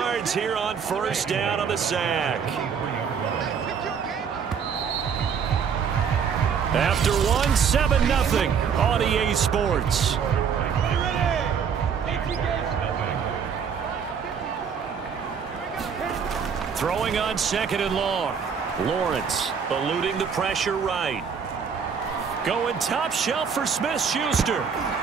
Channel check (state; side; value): quieter; left; 6.8 dB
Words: here on first down on the sack. After one, 7-0 on EA Sports. Throwing on 2nd and long. Lawrence eluding the pressure right. Going top shelf for Smith-Schuster.